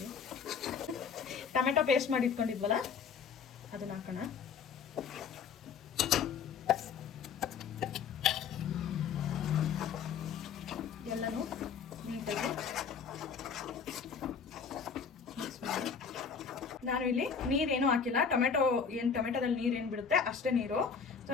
ಟೊಮೆಟೊ ಪೇಸ್ಟ್ ಮಾಡಿ ಇಟ್ಕೊಂಡಿದ್ವಲ್ಲ ಅದನ್ನು ಹಾಕೋಣ. ಎಲ್ಲನೂ ನೀಟಾಗಿ ಮಿಕ್ಸ್ ಮಾಡಿ. ನಾನು ಇಲ್ಲಿ ನೀರೇನು ಹಾಕಿಲ್ಲ. ಟೊಮೆಟೊದಲ್ಲಿ ನೀರೇನು ಬಿಡುತ್ತೆ ಅಷ್ಟೇ ನೀರು. ಸೊ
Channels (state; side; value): quieter; right; 6.3 dB